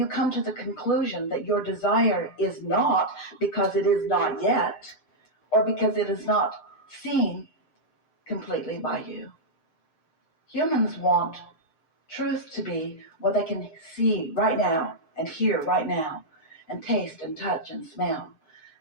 come to the conclusion that your desire is not because it is not yet, or because it is not seen completely by you. Humans want truth to be what they can see right now, and hear right now, and taste and touch and smell.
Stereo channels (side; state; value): right; late; 6.6 ms